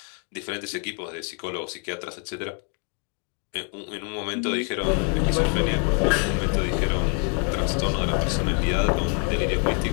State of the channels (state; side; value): quieter; right; 38.6 dB